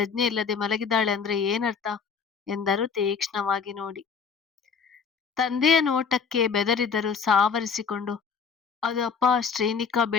ಇಲ್ಲದೆ ಮಲಗಿದ್ದಾಳೆ ಅಂದ್ರೆ ಏನರ್ಥ ಎಂದರು ತೀಕ್ಷ್ಣವಾಗಿ ನೋಡಿ. ತಂದೆಯ ನೋಟಕ್ಕೆ ಬೆದರಿದರು ಸಾವರಿಸಿಕೊಂಡು, ಅದು ಅಪ್ಪ, ಶ್ರೀನಿಕಾ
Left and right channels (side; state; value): right; quieter; 6.0 dB